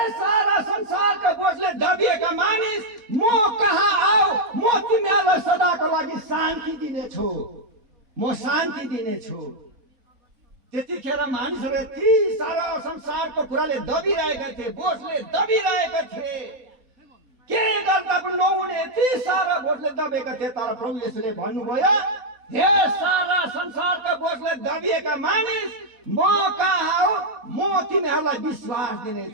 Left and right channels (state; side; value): late; left; 3.8 ms